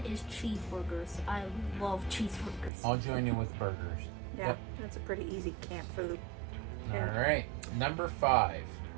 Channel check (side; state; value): left; drops out; at 2.7 s